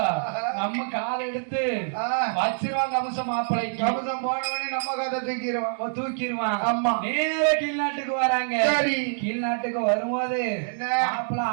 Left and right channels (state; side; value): silent; left; digital silence